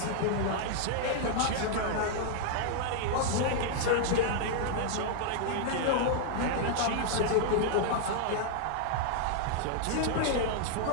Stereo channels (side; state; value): both; different; correlation -0.01